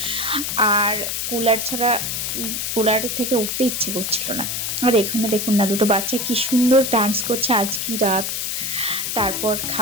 আর কুলার ছাড়া কুলার থেকে উঠতে ইচ্ছে করছিল না। আর এখানে দেখুন না, দুটো বাচ্চা কি সুন্দর ডান্স করছে আজ কি রাত। তারপর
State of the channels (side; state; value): left; noise; hiss, 2 dB below the sound